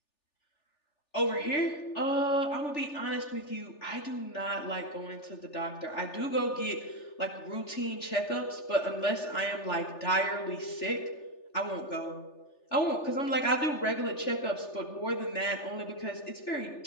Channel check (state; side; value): late; right; 3.4 ms